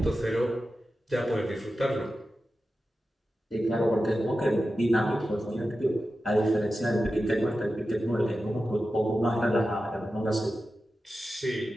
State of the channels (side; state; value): both; normal; correlation 0.93